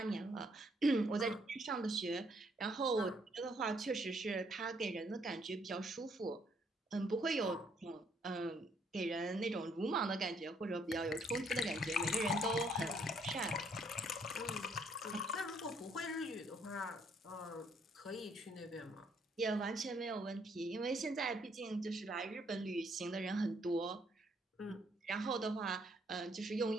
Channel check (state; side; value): normal; both; correlation 0.69